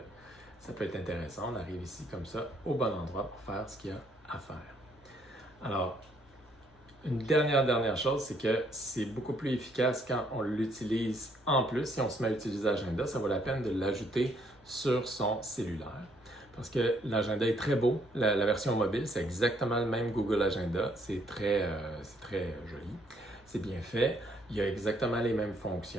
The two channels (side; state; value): both; normal; correlation 0.68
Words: intéressant. On arrive ici comme ça, au bon endroit pour faire ce qu'il y a à faire. Alors, une dernière chose, c'est que c'est beaucoup plus efficace quand on l'utilise en plus. Si on se met à utiliser Agenda, ça vaut la peine de l'ajouter sur son cellulaire. Parce que l'agenda est très beau. La version mobile, c'est exactement le même Google Agenda. C'est très joli. C'est bien fait. Il y a exactement les mêmes